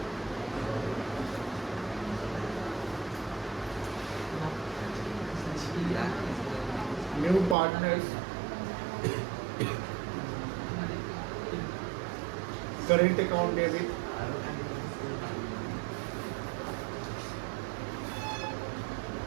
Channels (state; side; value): drops out; left; at 7.6 s